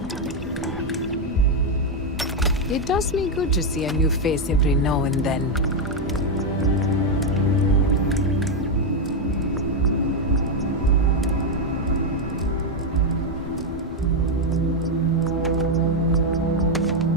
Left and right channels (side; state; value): both; normal; correlation 0.02